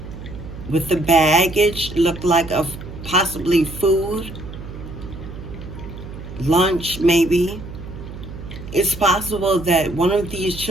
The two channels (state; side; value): noise; right; hum, 12 dB below the sound